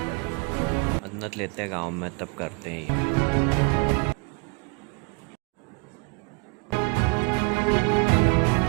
मन्नत लेते हैं गांव में तब करते हैं ये।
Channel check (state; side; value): quieter; left; 34.5 dB